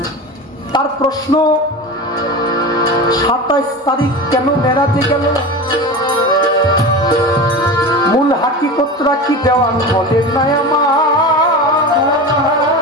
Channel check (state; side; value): normal; both; correlation 0.29